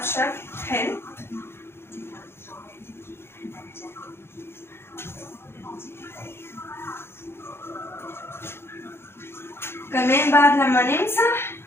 حلو. كمان بعد لما نمسح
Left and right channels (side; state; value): right; late; 0.12 ms